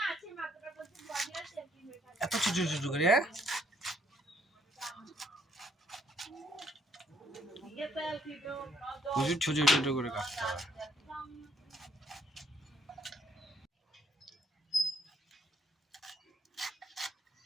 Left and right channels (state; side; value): normal; both; correlation 0.68